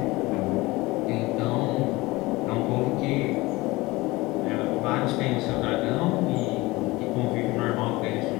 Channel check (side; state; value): right; quieter; 21.3 dB